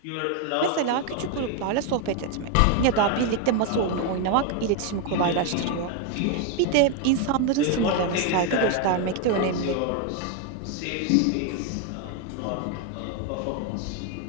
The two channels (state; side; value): different; both; correlation 0.01